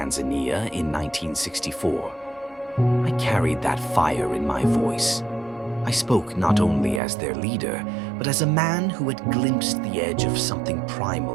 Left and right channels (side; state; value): left; drops out; at 7.0 s